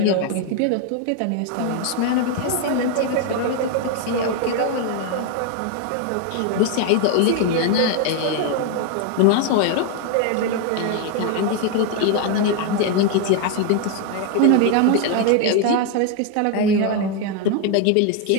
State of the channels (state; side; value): different; both; correlation 0.01